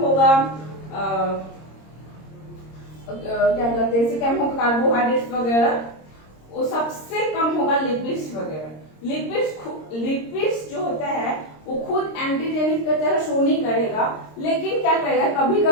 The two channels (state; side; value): late; right; 26 ms